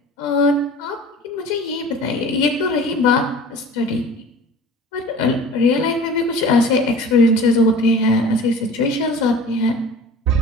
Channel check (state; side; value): normal; both; correlation 0.41